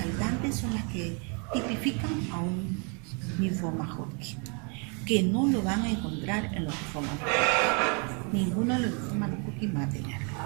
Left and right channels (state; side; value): quieter; left; 36.2 dB